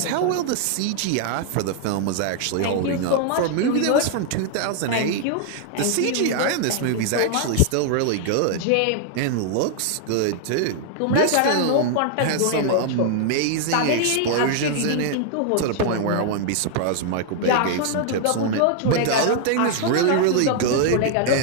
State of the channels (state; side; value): different; both; correlation -0.01